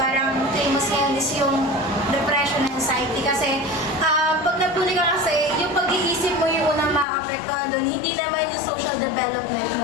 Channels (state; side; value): drops out; right; at 7.1 s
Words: parang famous ngayon is yung depression and anxiety. Kasi, pag nabully ka kasi, yung pag-iisip mo yung unang makakapektuhan doon, hindi naman yung social development